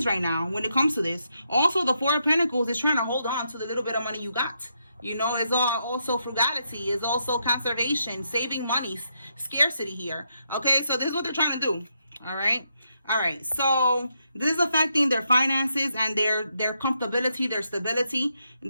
right now when it comes to this. Also, the Four of Pentacles is trying to hold on to the little bit of money you got. You know, it's also frugality, it's also conservation, saving money, scarcity here. Okay, so this is what they're trying to do. All right, so this is affecting their finances and their comfortability, their stability.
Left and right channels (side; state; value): both; inverted; correlation -0.80